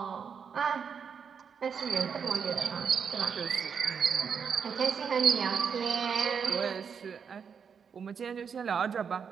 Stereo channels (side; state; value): left; quieter; 6.7 dB